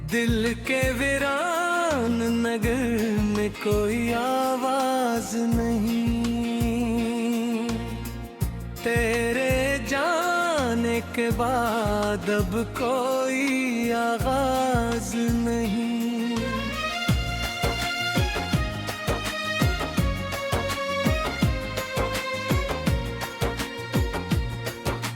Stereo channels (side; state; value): both; identical; correlation 1.00